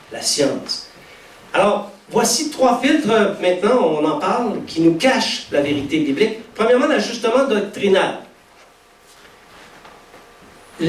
la science. Alors, voici 3 filtres, maintenant, on en parle, qui nous cachent la vérité biblique. Premièrement, l'ajustement doctrinal.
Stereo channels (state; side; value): identical; both; correlation 1.00